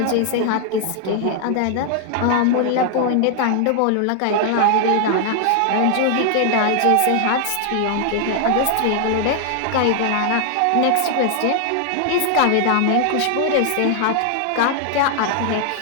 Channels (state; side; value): different; both; correlation 0.00